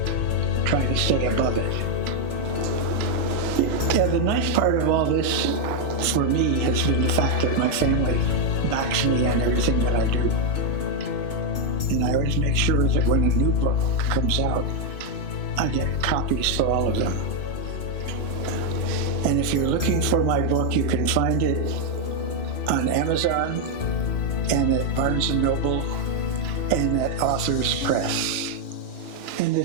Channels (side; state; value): right; late; 3.0 ms